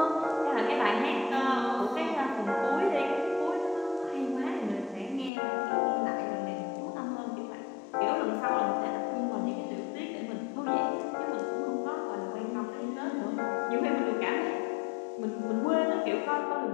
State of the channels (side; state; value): right; drops out; at 5.3 s